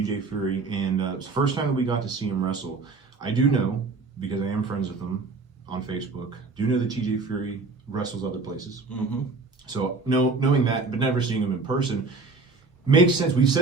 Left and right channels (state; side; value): quieter; left; 4.0 dB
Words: Fury, and it's the first time that we got to see him wrestle. I do know, because I am friends with him on Facebook, do know that TJ Fury wrestles other places. Mm-hmm. So knowing that, but never seeing him in person, makes sense. We've